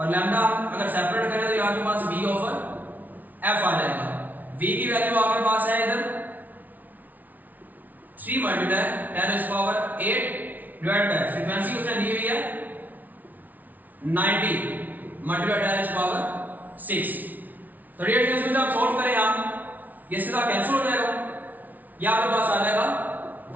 लैम्डा अगर सेपरेट करें तो आपके पास v/f आ जाएगा। v की वैल्यू आपके पास है इधर 3 × 10⁸ डिवाइड बाय फ्रीक्वेंसी उसने दी हुई है 90 × 10⁻⁶। तो डियर स्टूडेंट्स आप सॉल्व करें हम, ये सीधा कैंसिल हो जाएगा, ये आपके पास आ जाएगा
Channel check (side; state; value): left; late; 0.079 ms